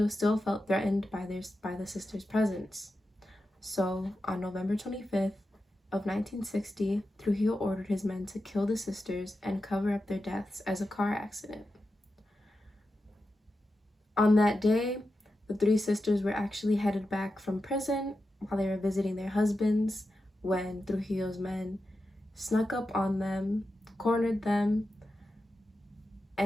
still felt threatened by the sisters' presence. So, on November 25th of 1960, Trujillo ordered his men to kill the sisters and cover up their deaths as a car accident. On that day, the 3 sisters were actually headed back from prison while they were visiting their husbands when Trujillo's men snuck up on them, cornered them,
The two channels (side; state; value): both; normal; correlation 0.90